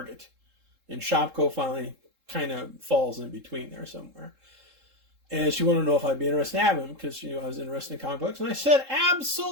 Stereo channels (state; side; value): late; left; 3.7 ms